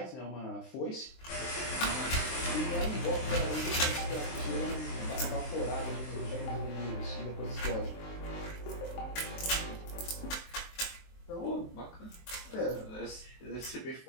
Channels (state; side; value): late; right; 23 ms